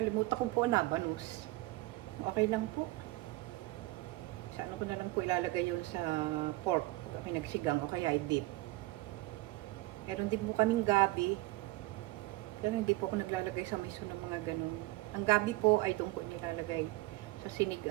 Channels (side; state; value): left; quieter; 19.4 dB